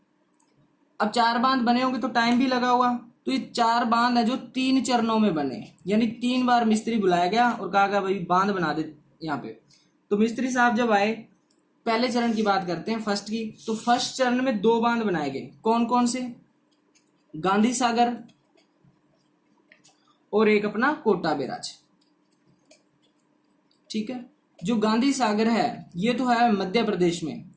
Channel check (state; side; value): identical; both; correlation 1.00